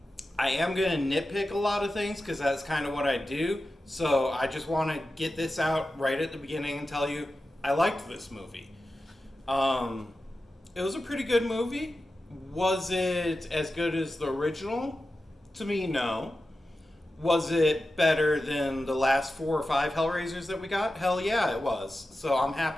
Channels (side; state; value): both; normal; correlation 0.93